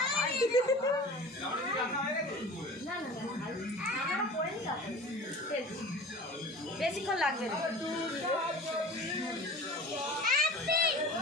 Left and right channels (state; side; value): normal; both; correlation 0.38